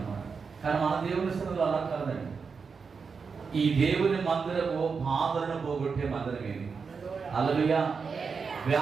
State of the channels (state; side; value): quieter; left; 5.4 dB